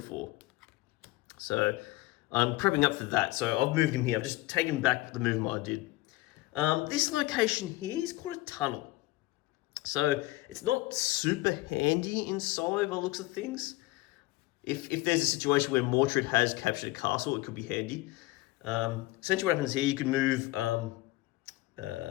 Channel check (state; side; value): quieter; right; 19.5 dB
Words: So I'm prepping up for that. So I've moved him here. I've just taken back the movement I did. This location here is called a tunnel. So it's not super handy in Solo by the looks of things. If there's a situation where Mordred has captured a castle, it could be handy. Essentially what happens here, you can move, and